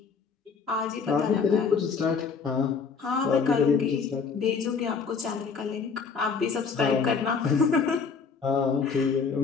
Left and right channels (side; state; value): right; quieter; 5.4 dB